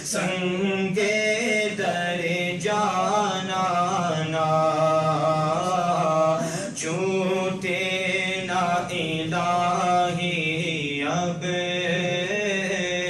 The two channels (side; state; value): both; identical; correlation 1.00